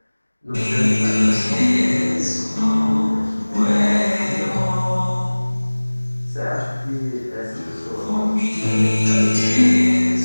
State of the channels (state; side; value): inverted; both; correlation -1.00